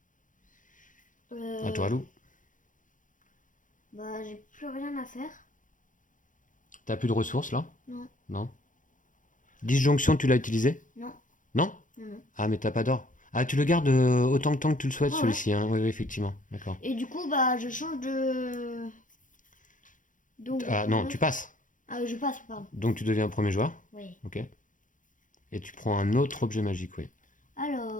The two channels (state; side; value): late; right; 0.38 ms